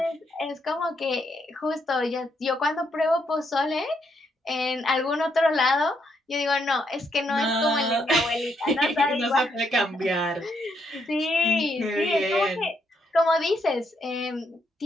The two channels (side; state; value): both; normal; correlation 0.76